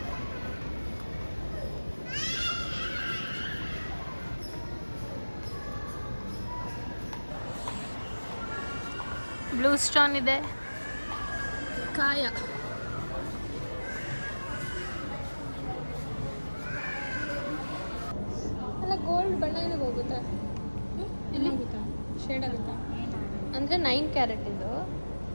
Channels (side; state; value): both; inverted; correlation -1.00